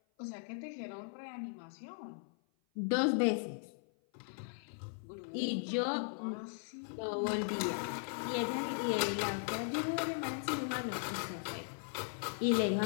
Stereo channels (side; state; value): right; silent; 53 dB below the other